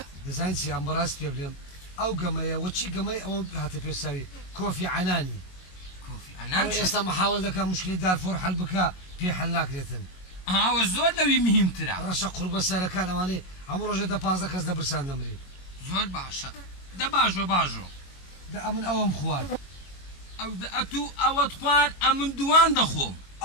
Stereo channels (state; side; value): late; right; 22 ms